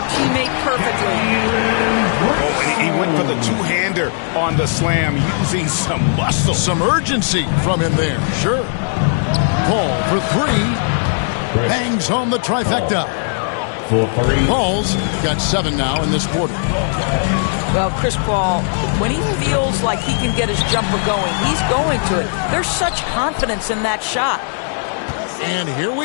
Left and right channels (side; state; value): right; silent; digital silence